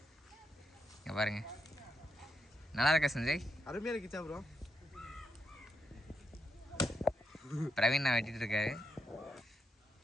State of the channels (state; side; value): normal; both; correlation 0.83